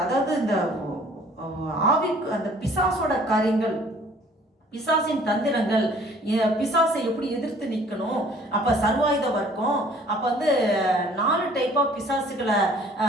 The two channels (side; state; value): both; normal; correlation 0.55